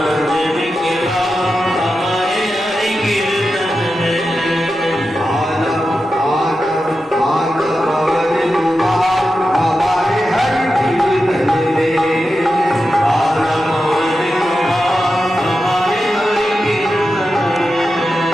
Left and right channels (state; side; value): normal; both; correlation 0.90